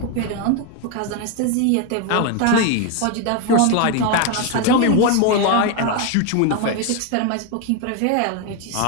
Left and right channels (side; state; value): both; different; correlation 0.01